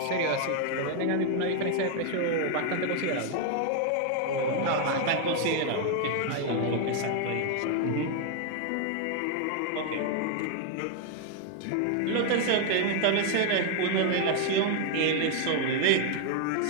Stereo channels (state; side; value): different; both; correlation 0.00